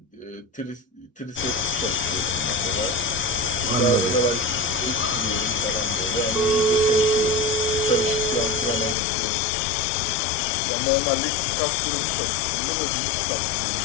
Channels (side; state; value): right; drops out; at 9.0 s